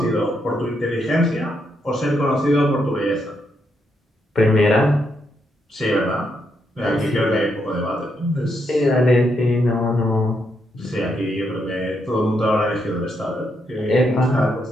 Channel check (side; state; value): both; normal; correlation 0.79